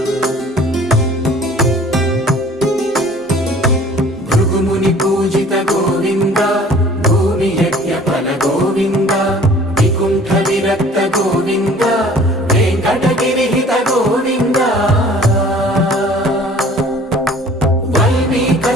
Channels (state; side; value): normal; both; correlation 0.50